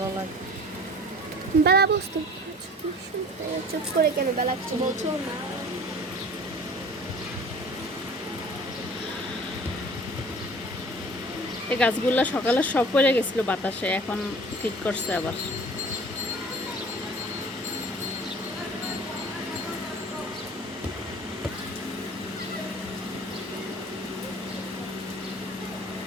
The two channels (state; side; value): normal; both; correlation 0.45